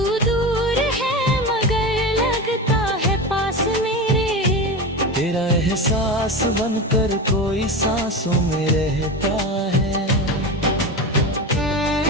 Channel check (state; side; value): normal; both; correlation 0.24